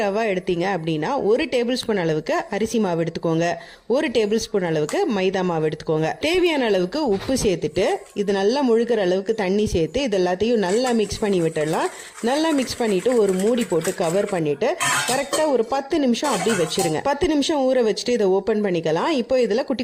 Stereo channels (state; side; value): identical; both; correlation 1.00